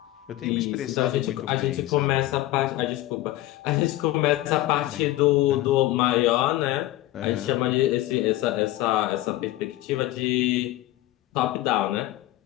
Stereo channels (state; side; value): quieter; right; 16.0 dB